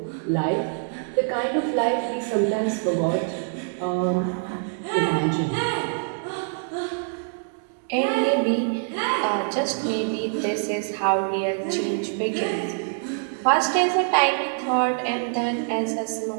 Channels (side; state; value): left; silent; 62 dB below the other